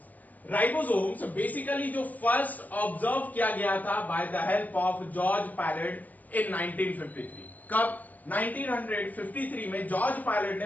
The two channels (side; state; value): right; late; 0.081 ms